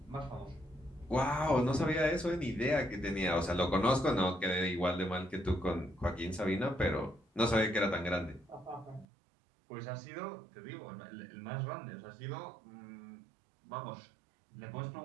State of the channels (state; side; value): drops out; left; at 9.1 s